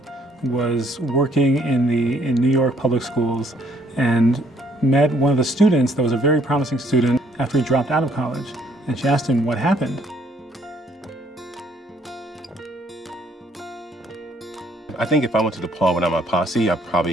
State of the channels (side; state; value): both; normal; correlation 0.64